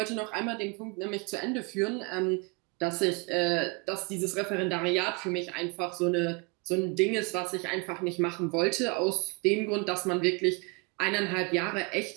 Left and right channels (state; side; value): quieter; left; 29.9 dB